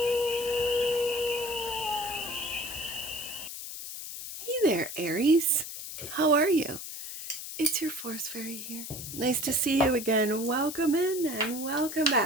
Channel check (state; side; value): noise; left; hiss, 9 dB below the sound